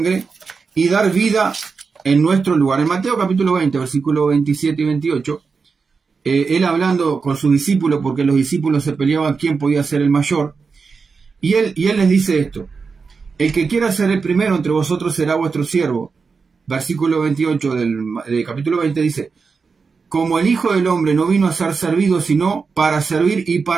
y dar vida en nuestro lugar. En Mateo capítulo 20, versículos 27 y 28, él hablando con sus discípulos, porque los discípulos se peleaban quién podía ser el mayor, y él les dice esto: el que quiera ser el primero entre vosotros será vuestro siervo. Versículo 28 del capítulo 20 dice: como el Hijo del Hombre no vino a ser servido, sino para servir y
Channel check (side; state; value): left; quieter; 5.0 dB